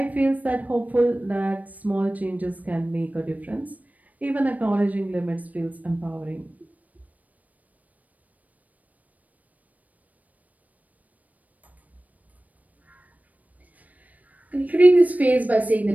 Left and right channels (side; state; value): left; late; 0.074 ms